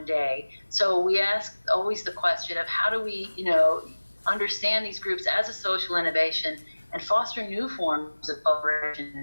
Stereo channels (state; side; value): inverted; both; correlation -1.00